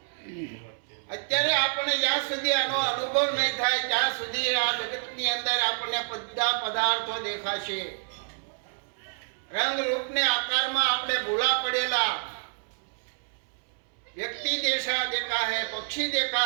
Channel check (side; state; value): left; silent; 59 dB below the other